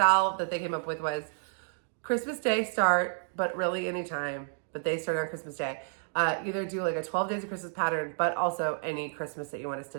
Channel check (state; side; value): silent; left; digital silence